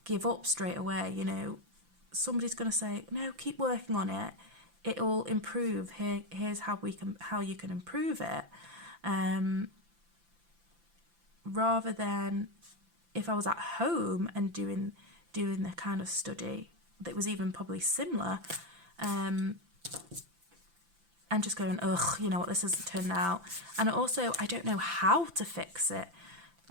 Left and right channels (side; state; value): left; late; 5.9 ms